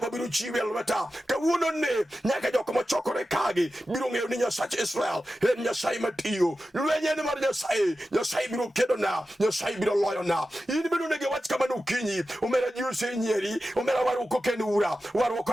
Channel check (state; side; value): normal; both; correlation 0.93